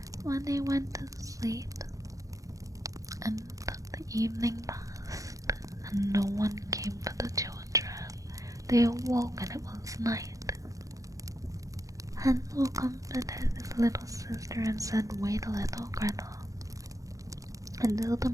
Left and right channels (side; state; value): left; late; 0.16 ms